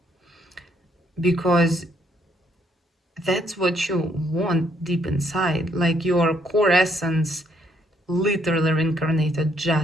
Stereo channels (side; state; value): both; normal; correlation 0.70